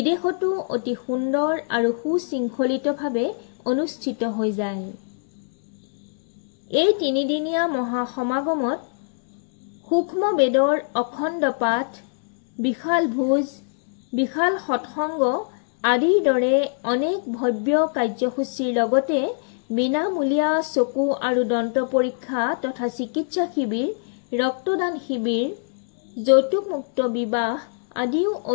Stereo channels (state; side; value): silent; right; 63 dB below the other